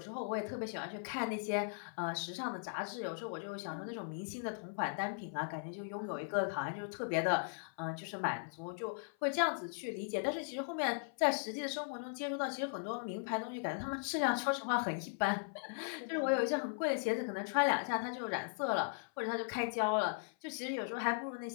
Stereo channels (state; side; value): silent; right; 52 dB below the other